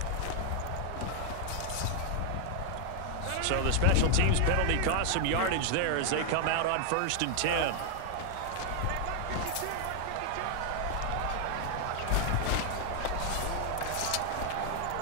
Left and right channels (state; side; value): different; both; correlation 0.00